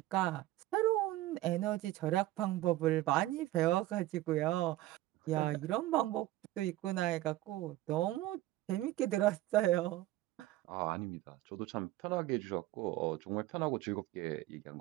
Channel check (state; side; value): quieter; left; 16.0 dB